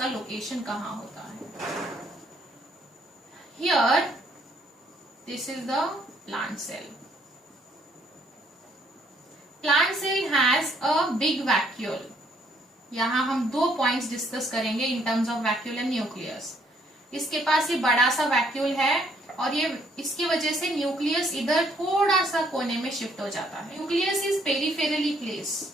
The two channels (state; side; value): normal; both; correlation 0.67